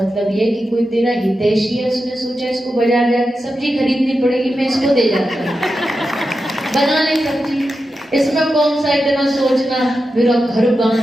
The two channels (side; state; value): both; normal; correlation 0.90